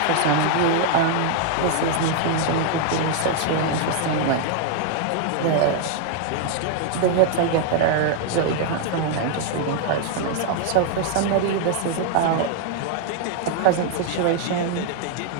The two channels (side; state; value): both; different; correlation 0.00